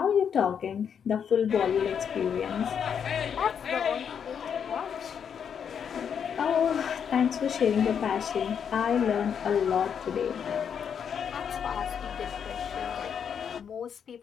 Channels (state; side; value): quieter; right; 7.6 dB